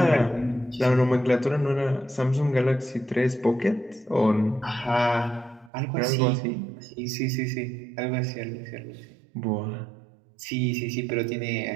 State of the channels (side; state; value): left; drops out; at 5.7 s